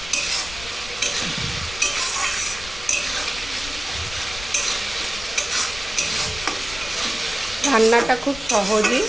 রান্নাটা খুব সহজই,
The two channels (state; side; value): noise; left; rumble, 14 dB below the sound